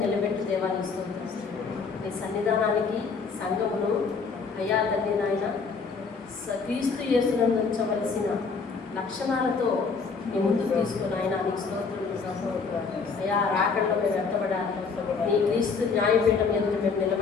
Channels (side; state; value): right; quieter; 5.0 dB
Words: నిలబెట్టి దేవాన్ని స్తోత్రం. నీ సన్నిధానానికి సంఘమును అయ్యా తండ్రి నాయన క్రీస్తు యేసునందు ఉంచవలసిన లక్షణాలతో నీ ముందుకు తీసుకుని ఆయన నీకు స్తోత్రం. అయ్యా రాకడలో మేము వ్యక్తపడాలి. నీ క్రీస్తు న్యాయపీఠం ఎందుకు మేము